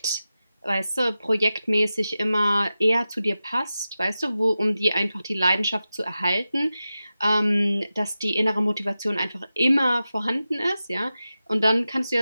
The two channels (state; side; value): inverted; both; correlation -0.93